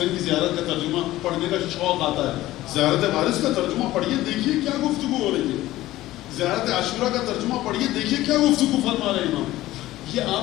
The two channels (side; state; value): right; quieter; 16.1 dB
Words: کی زیارت کا ترجمہ پڑھنے کا شوق آتا ہے. زیارت وارث کا ترجمہ پڑھیے، دیکھیے کیا گفتگو ہو رہی ہے. زیارت عاشورہ کا ترجمہ پڑھیے، دیکھیے کیا گفتگو فرما رہے ہیں امام. یہ